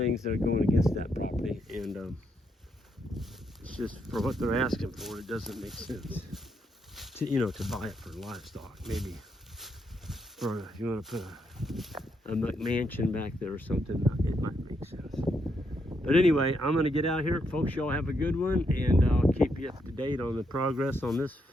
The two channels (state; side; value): normal; both; correlation 0.78